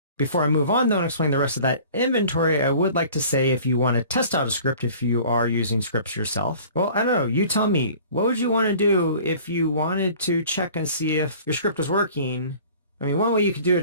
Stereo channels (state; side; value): inverted; both; correlation -0.47